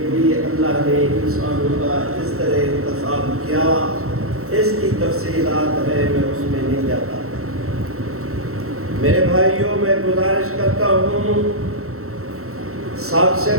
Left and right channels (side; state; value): left; late; 0.63 ms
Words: بھی اللہ نے انسانوں کا اس طرح انتخاب کیا۔ اس کی تفصیلات ہے، میں اس میں نہیں جاتا۔ میرے بھائیوں، میں گزارش کرتا ہوں، سب سے